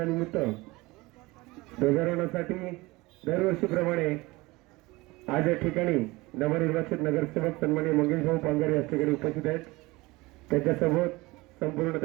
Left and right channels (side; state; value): left; quieter; 21.8 dB